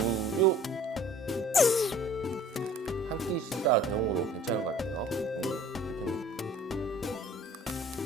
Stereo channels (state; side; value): normal; both; correlation 0.50